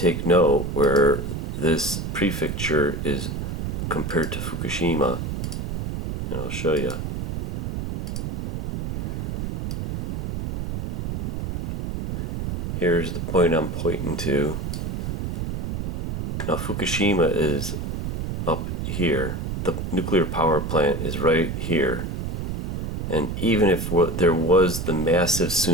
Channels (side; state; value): right; noise; rumble, 3 dB below the sound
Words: note where this prefecture is compared to Fukushima, and I'll show you. Here's the point I'm pointing to. Now Fukushima is up here. The nuclear power plant is right here. And even if there was the massive